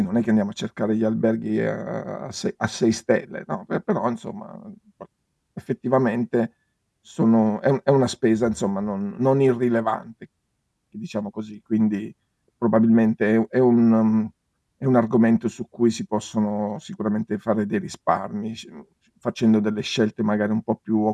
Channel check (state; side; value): identical; both; correlation 1.00